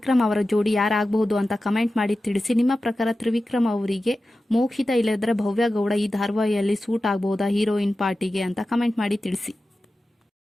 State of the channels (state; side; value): normal; both; correlation 0.94